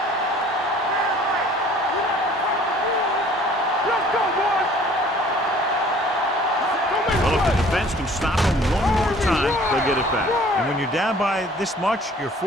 Can stop them one more time, they'll get it back. And when you're down by this much, you're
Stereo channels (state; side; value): normal; both; correlation 0.53